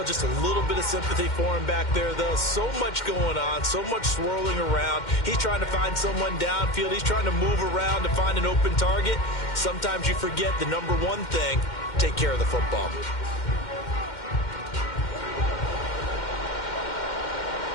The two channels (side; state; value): right; late; 2.1 ms